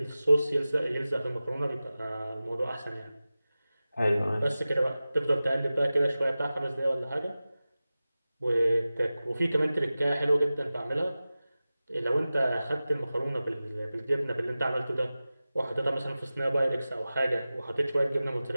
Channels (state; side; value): inverted; both; correlation -0.96